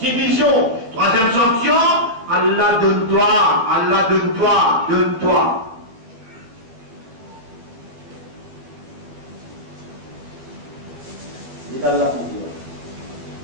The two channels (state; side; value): late; left; 12 ms